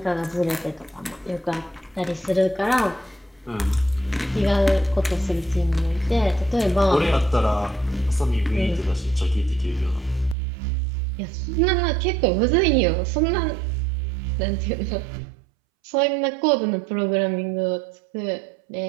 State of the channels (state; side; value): drops out; left; at 10.4 s